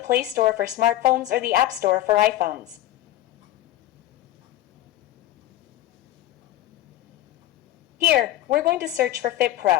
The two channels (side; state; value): right; quieter; 14.6 dB